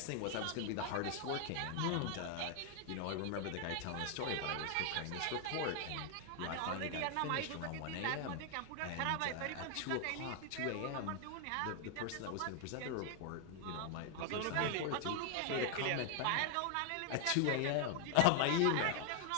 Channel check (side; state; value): both; different; correlation 0.00